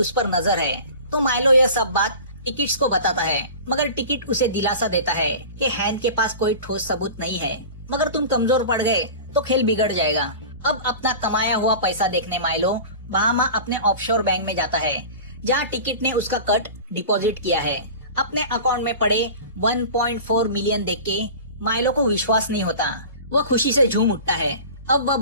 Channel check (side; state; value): both; inverted; correlation -0.36